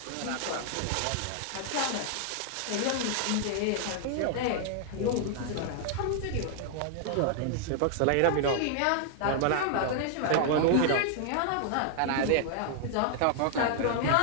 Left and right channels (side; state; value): both; different; correlation 0.00